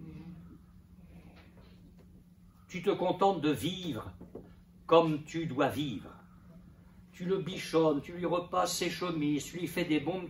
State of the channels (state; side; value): identical; both; correlation 1.00